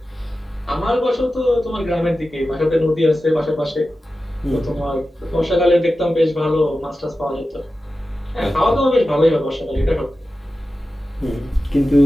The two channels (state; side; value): normal; both; correlation 0.93